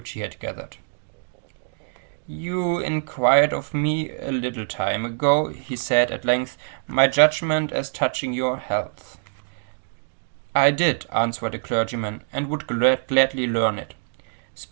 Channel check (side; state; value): left; silent; digital silence